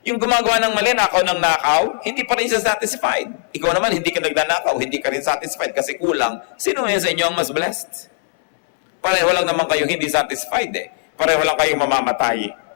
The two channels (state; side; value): silent; right; 66 dB below the other